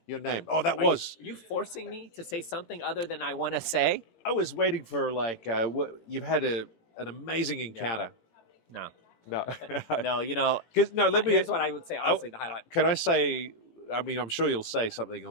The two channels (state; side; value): late; right; 18 ms